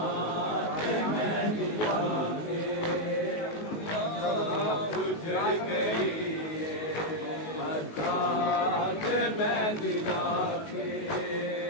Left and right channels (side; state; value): right; late; 19 ms